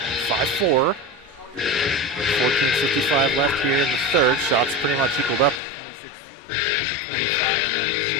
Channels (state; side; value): drops out; right; at 5.6 s